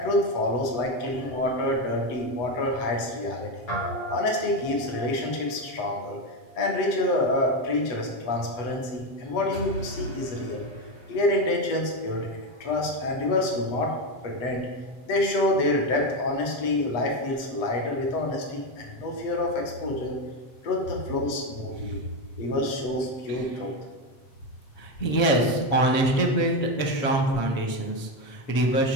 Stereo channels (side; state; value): right; late; 8.1 ms